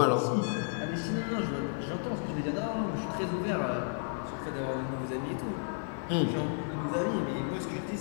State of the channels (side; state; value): right; silent; 56 dB below the other